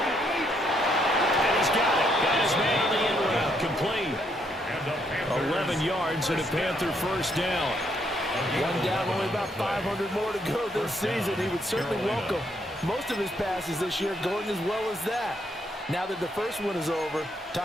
he's got it. Got his man on the end route. Complete. 11 yards and a Panther first down. One down, only about 500 more to go this season. He would certainly welcome most of his passes this year going as well as that. Now that the first one is over,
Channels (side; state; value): both; normal; correlation 0.73